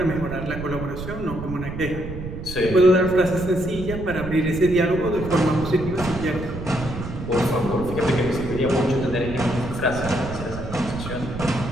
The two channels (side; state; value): right; noise; rumble, 8 dB below the sound